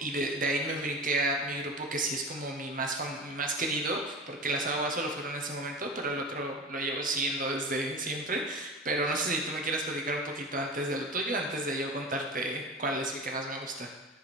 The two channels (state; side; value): normal; both; correlation 0.31